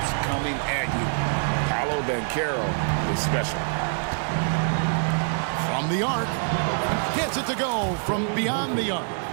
coming at you. Paolo Banchero is special. From the arc. Gets it to go from beyond the arc.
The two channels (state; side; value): silent; left; 62 dB below the other